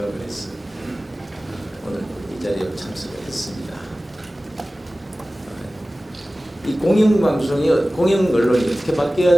해서 오늘 이 자리에 참석을 했습니다. 이 공영방송이 공영 언론이 어떻게 바뀌어야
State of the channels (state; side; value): normal; both; correlation 0.97